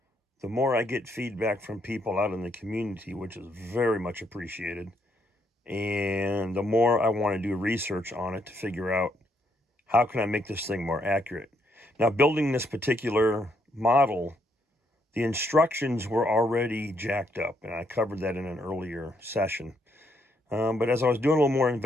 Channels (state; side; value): normal; both; correlation 0.74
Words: the more I get feedback from people out in the community, which is very much appreciated. And the more I want to do research on it to figure out how can I make this thing more accurate. Now, building this particular model, the instructions were already jacked up, and I covered that in an earlier session. But as I was doing a little more